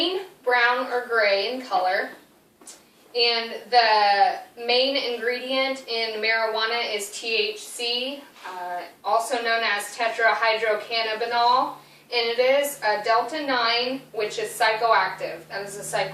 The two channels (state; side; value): identical; both; correlation 1.00